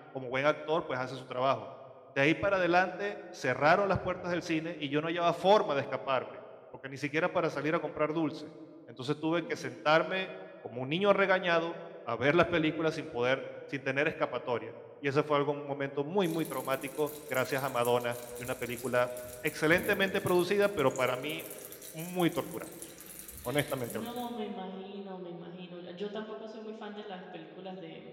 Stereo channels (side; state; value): both; identical; correlation 1.00